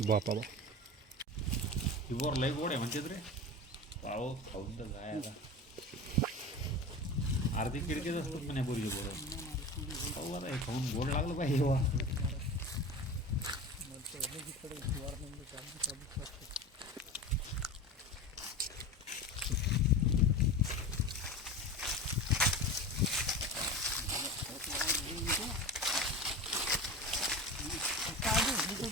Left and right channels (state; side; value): normal; both; correlation 0.30